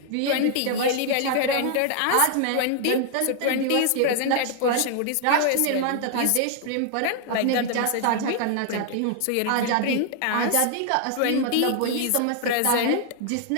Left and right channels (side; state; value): both; different; correlation 0.00